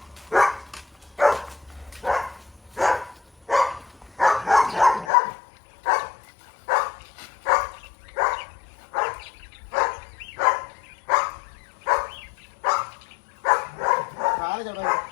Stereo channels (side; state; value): right; drops out; at 5.1 s